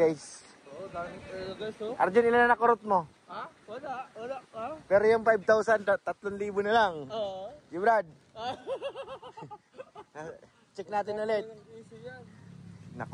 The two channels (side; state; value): both; identical; correlation 1.00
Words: Oo, daming pera guys oh. Arjun, ilan na nakurot mo? Ha? Wala. Ha? Pero yung 5,000, 3,000 na lang. Oo. Si Brad. Check natin ulit. Easy yan.